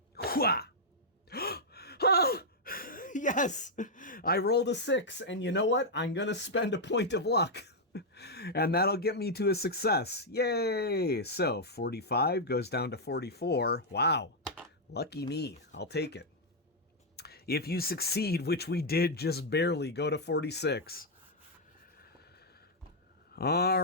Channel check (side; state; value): both; normal; correlation -0.03